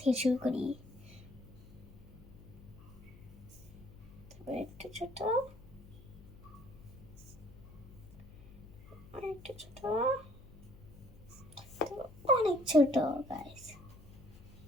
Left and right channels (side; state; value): left; noise; hum, 19 dB below the sound